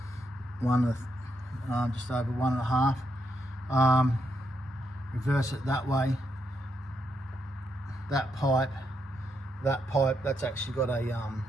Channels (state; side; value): normal; both; correlation 0.80